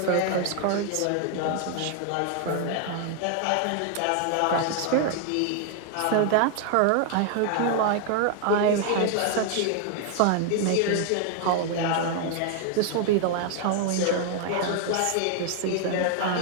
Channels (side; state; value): both; different; correlation 0.00